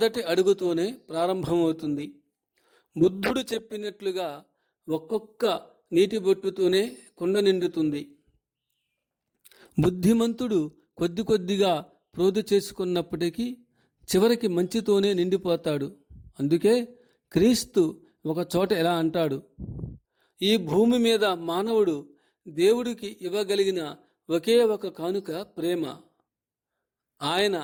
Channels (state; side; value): identical; both; correlation 1.00